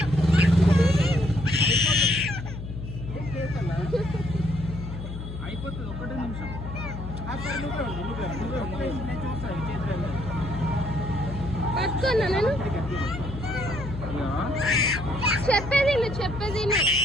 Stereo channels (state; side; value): noise; left; hum, 8 dB below the sound